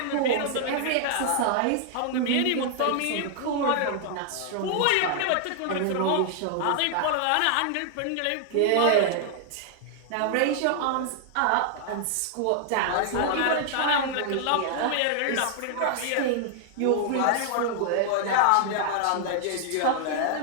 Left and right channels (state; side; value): different; both; correlation 0.00